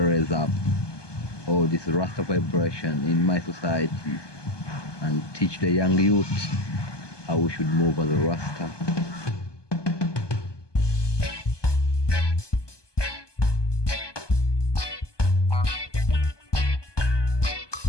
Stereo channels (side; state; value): right; late; 1.2 ms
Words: up all this Rasta vibration in my society and teach the young youth how we should move as a Rasta.